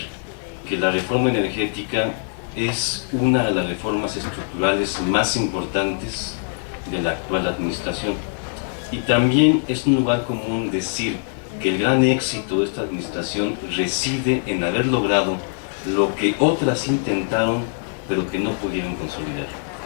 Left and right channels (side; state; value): right; silent; 58 dB below the other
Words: que la reforma energética es una de las reformas estructurales más importantes de la actual administración. Y también es un lugar común decir que el gran éxito de esta administración reside en haber logrado lo que otras intentaron pero que no pudieron consolidar.